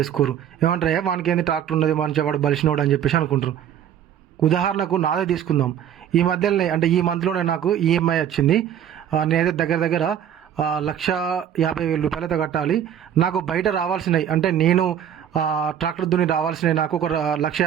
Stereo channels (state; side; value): quieter; left; 9.6 dB